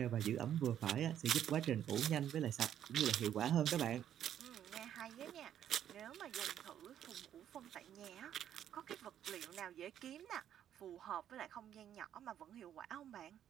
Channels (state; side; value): quieter; left; 10.3 dB